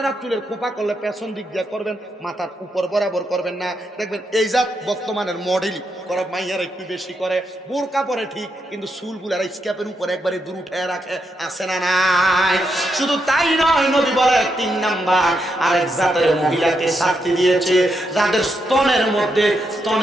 চুলের খোপা করলে পেছন দিক দিয়ে করবেন, মাথার উপর বরাবর করবেন না। দেখবেন এই জাত বর্তমানের মডেল করা মাইয়ারা একটু বেশি করে, বোরকা পরে ঠিক, কিন্তু চুলগুলার স্ক্যাপের উপর একবারে দূর উঠায় রাখে, আছে না নাই? শুধু তাই নয়, নবী বলে 3 নাম্বার আরেক জাতের মহিলাকে শাস্তি দিয়েছে, যাদের স্তনের মধ্যে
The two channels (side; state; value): both; normal; correlation 0.82